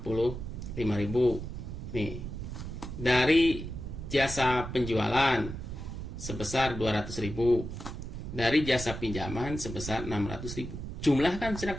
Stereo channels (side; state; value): right; noise; rumble, 7 dB below the sound